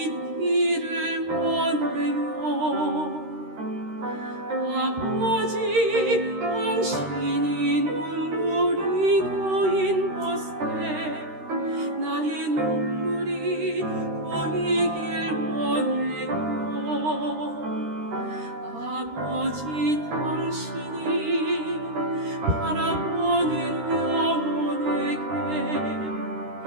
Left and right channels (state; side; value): late; left; 13 ms